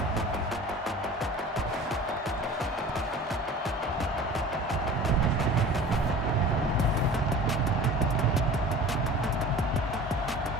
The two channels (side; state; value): both; normal; correlation 0.41